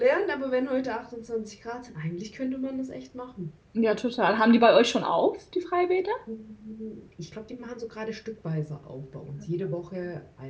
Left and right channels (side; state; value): both; identical; correlation 1.00